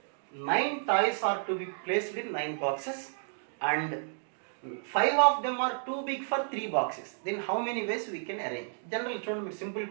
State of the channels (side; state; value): left; silent; digital silence